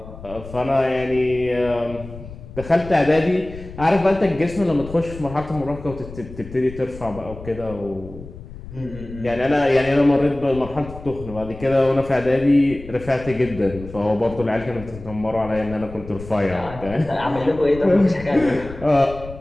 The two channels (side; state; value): left; noise; rumble, 14 dB below the sound